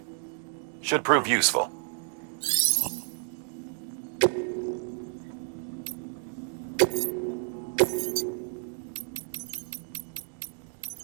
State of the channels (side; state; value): left; silent; 58 dB below the other